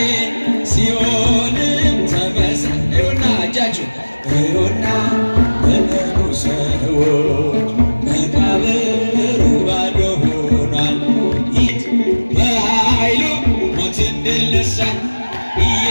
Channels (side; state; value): both; inverted; correlation -1.00